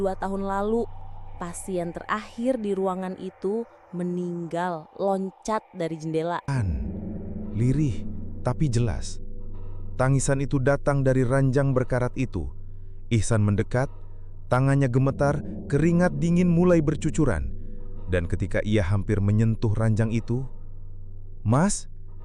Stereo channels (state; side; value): identical; both; correlation 1.00